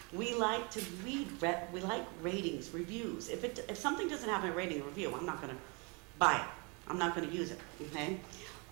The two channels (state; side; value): quieter; left; 31.4 dB